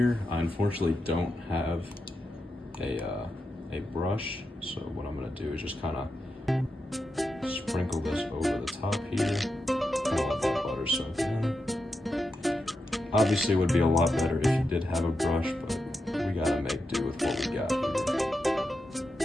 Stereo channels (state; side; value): normal; both; correlation 0.87